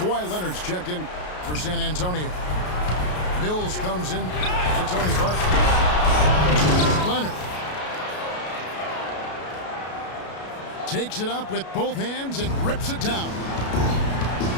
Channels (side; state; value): right; late; 33 ms